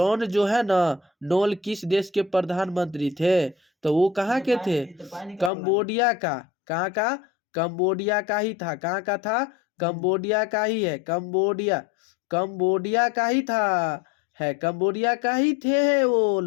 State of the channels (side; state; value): right; drops out; at 5.5 s